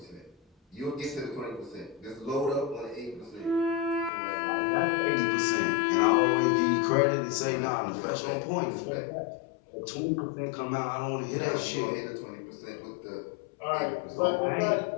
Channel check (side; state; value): right; drops out; at 4.1 s